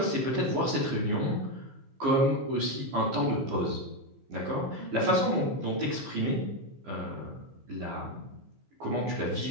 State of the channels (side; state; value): left; late; 15 ms